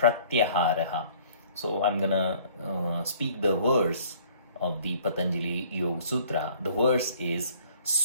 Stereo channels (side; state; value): both; inverted; correlation -0.55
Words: So I'm gonna speak the verse of the Patanjali Yoga Sutra. The verse is